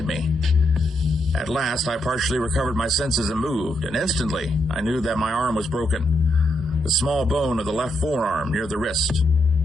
me. At last, I partially recovered my senses and moved, and instantly I knew that my arm was broken, the small bone of the left forearm near the wrist.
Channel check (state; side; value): normal; both; correlation 0.80